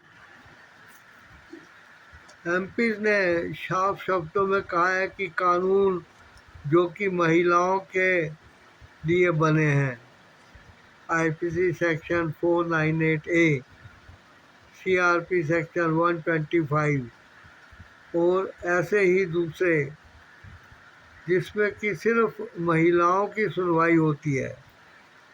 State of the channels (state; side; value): identical; both; correlation 1.00